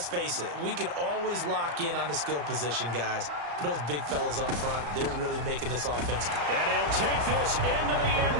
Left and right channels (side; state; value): left; late; 34 ms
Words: face it, we can always lock in on the skill position, guys. But those big fellas up front, they're really making this offense. And he'll take this into the end